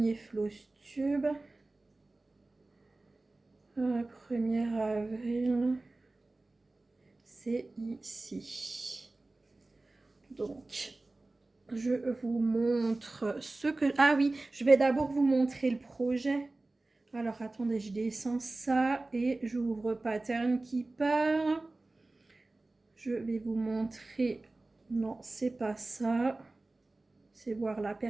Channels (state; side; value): quieter; left; 3.0 dB